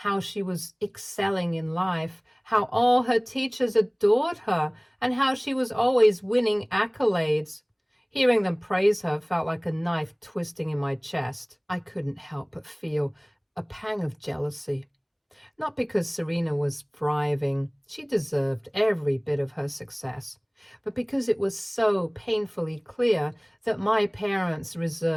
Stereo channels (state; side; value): identical; both; correlation 1.00